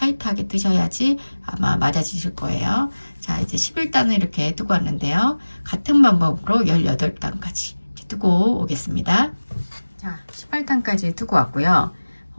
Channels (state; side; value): inverted; both; correlation -1.00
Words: 뜨셔야지 아마 맞아지실 거예요. 자, 이제 11단을 이렇게 뜨고 왔는데요. 같은 방법으로 18단까지 뜨고 오겠습니다. 자, 18단까지 뜨고 왔고요.